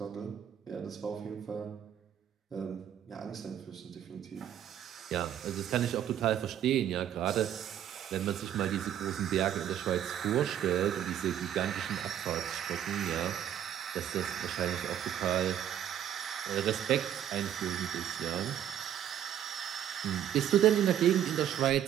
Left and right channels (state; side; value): quieter; left; 10.3 dB